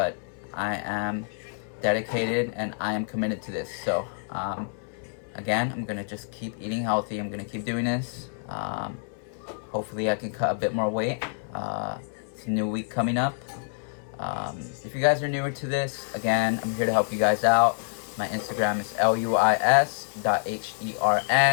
I am dedicated and I am committed to this. So again, I'm gonna just keep eating healthy. I'm gonna keep doing this. Hopefully I can cut a bit more weight. It's a new week coming up. If you guys are newer to this, again, I'm here to help you guys out. My Instagram is luis.hern,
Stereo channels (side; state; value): right; silent; digital silence